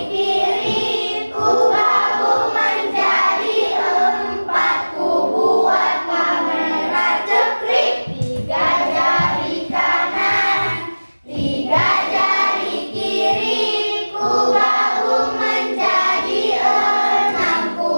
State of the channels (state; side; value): inverted; both; correlation -1.00